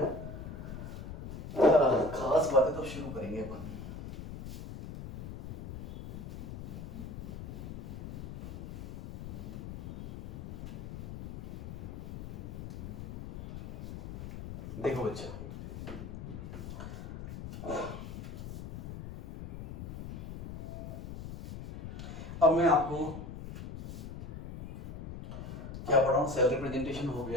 खास बातें तो शुरू करेंगे अपन। देखो बच्चा, अब मैं आपको क्या पढ़ा हूँ, सेल रिप्रेजेंटेशन हो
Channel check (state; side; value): noise; left; rumble, 8 dB below the sound